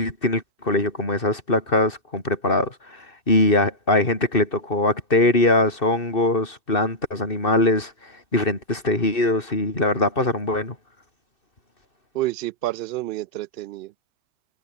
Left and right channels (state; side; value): late; right; 2.6 ms